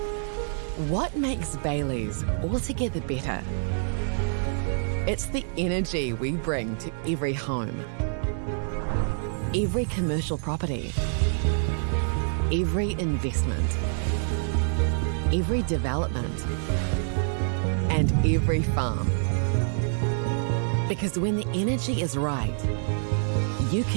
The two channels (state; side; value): silent; left; 60 dB below the other